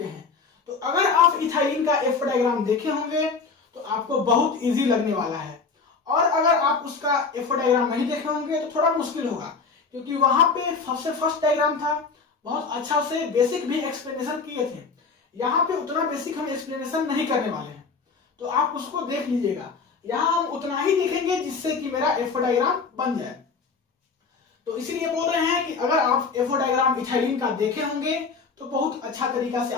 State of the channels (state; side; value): quieter; right; 4.8 dB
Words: हैं. तो अगर आप इथाइलिन का FO डायग्राम देखे होंगे तो आपको बहुत इजी लगने वाला है, और अगर आप उसका FO डायग्राम नहीं देखे होंगे तो थोड़ा मुश्किल होगा, क्योंकि वहां पे सबसे फर्स्ट डायग्राम था, बहुत अच्छा से बेसिक भी एक्सप्लेनेशन किए थे. यहाँ पे उतना बेसिक हम एक्सप्लेनेशन नहीं करने वाले हैं, तो आप उसको देख लीजिएगा. यहाँ हम उतना ही देखेंगे जिससे कि मेरा FO डायग्राम बन जाए. तो इसीलिए बोल रहे हैं कि अगर आप FO डायग्राम इथाइलिन का देखे होंगे तो बहुत अच्छा तरीका से